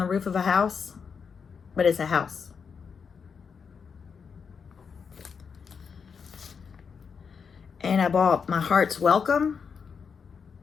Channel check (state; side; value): quieter; right; 6.1 dB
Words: roof of a house? But it's a house. And I bought My Heart's Welcome.